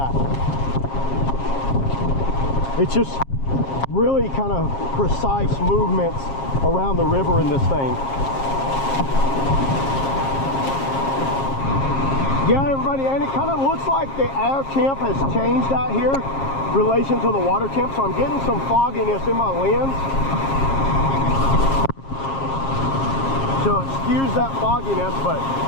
It's just really kind of precise movements around the river in this thing. Yeah, everybody, and it kind of looks like the air temp has changed out here in relation to the water temp, so I'm getting some fogginess in my lens. So it skews that fogginess, but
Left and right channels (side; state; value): right; late; 7.4 ms